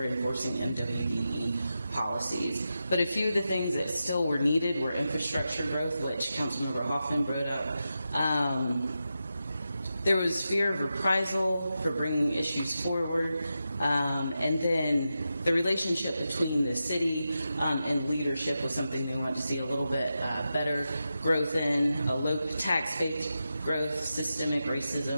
enforcing MWBE policies. But a few of the things that still were needed were infrastructure growth, which Councilmember Hoffman brought up. There was fear of reprisal for bringing issues forward, and then the relationship between the city and leadership was something they wanted to see a little bit better growth in, a low tax-based growth, systemic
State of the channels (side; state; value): both; inverted; correlation -0.90